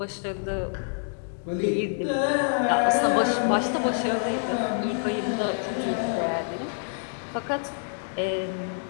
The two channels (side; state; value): right; silent; digital silence